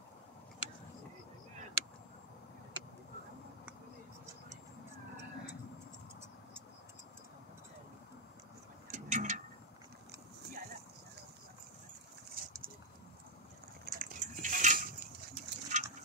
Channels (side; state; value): both; normal; correlation 0.01